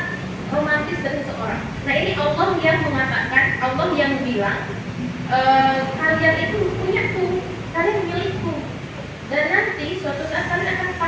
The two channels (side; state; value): both; identical; correlation 1.00